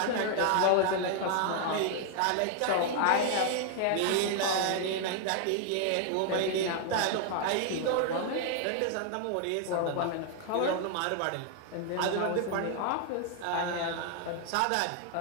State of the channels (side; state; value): both; different; correlation 0.00